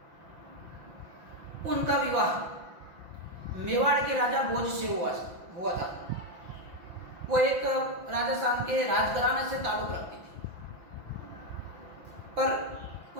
उनका विवाह मेवाड़ के राजा भोज से हुआ था। वो एक राजस्थान के राजघराने से ताल्लुक रखती थी, पर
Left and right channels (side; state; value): left; late; 5.9 ms